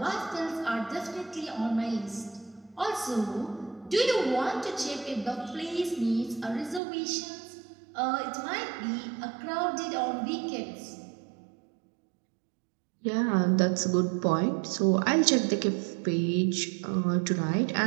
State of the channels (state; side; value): drops out; left; at 6.8 s